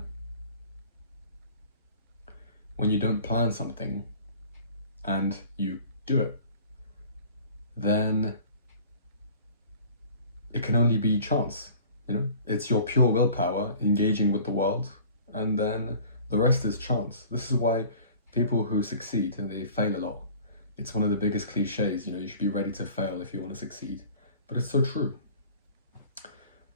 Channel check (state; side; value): inverted; both; correlation -0.46